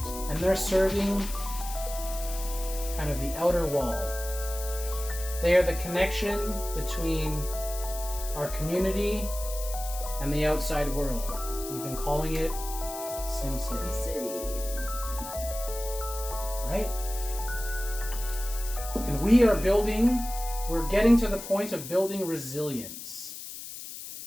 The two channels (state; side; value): noise; left; hiss, 10 dB below the sound